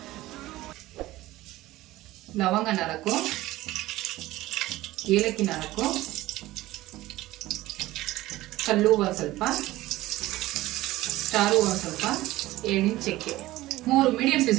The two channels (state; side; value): quieter; left; 17.1 dB